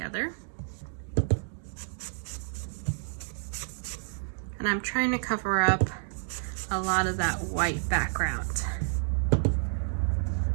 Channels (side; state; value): left; silent; digital silence